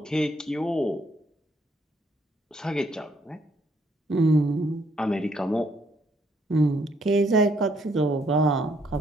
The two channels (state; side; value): normal; both; correlation 0.70